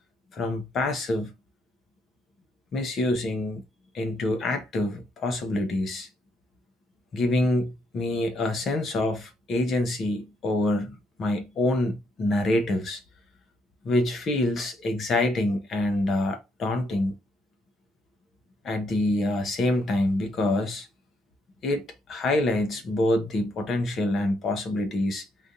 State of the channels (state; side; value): normal; both; correlation 0.75